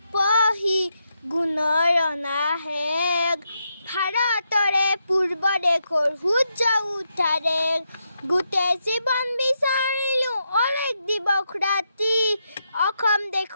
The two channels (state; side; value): inverted; both; correlation -0.82